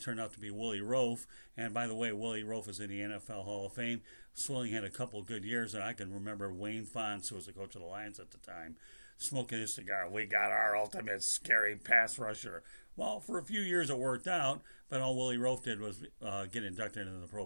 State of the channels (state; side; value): inverted; both; correlation -1.00